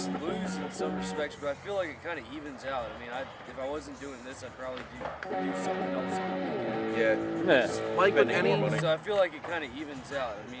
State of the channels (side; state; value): both; identical; correlation 1.00